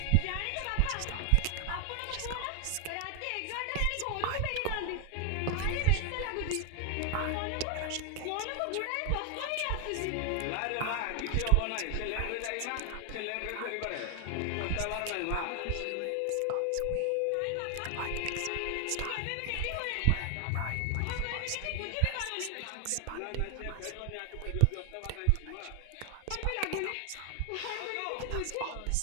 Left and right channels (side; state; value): both; different; correlation 0.00